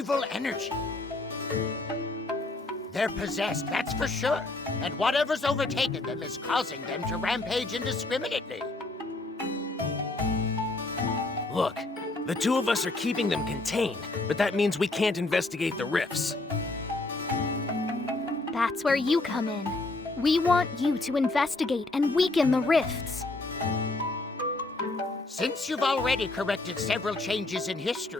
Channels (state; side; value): quieter; right; 3.0 dB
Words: energy. They're possessed, that's for sure. And whatever's overtaken them is causing them to rampage indiscriminately. Look, the two of us are keeping them contained, but that means we can't investigate the rifts. That's where you come in. We want you to investigate and weaken the rifts. Since you've already corrected several changes in